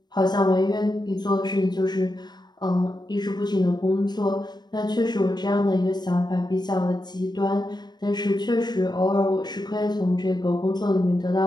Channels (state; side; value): late; right; 0.20 ms